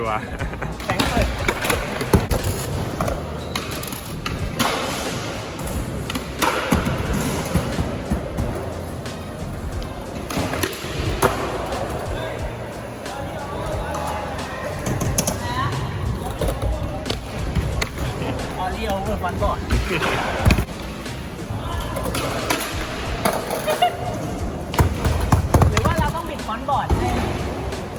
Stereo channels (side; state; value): both; identical; correlation 1.00